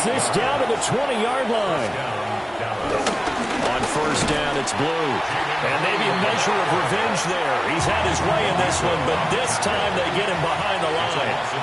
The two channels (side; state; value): both; identical; correlation 1.00